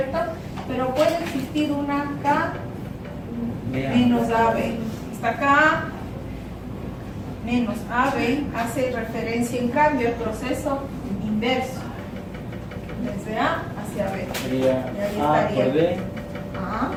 Pero puede existir una K menos AB. Esta K menos AB hace referencia en cambio al proceso inverso, desde A hacia B. Sería A por B. A, la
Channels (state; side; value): identical; both; correlation 1.00